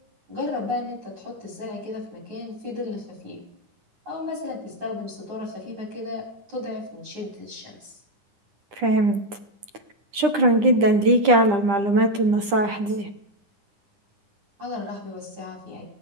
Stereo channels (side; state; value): left; late; 9.9 ms